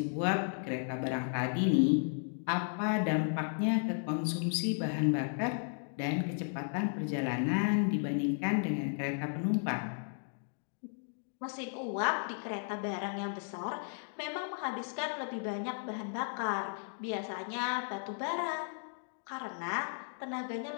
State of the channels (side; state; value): right; silent; digital silence